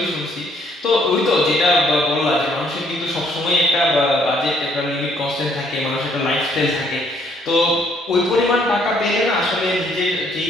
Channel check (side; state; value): both; normal; correlation 0.66